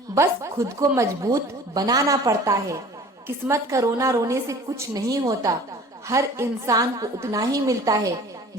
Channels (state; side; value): normal; both; correlation 0.45